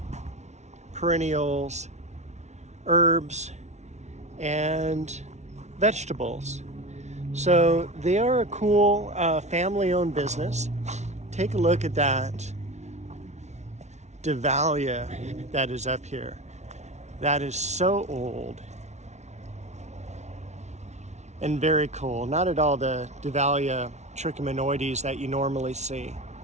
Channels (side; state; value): left; late; 0.32 ms